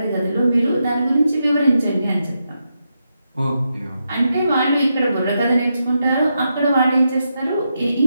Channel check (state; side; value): inverted; both; correlation -0.84